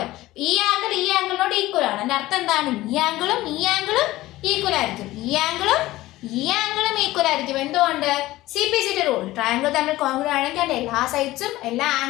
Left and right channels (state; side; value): quieter; right; 17.2 dB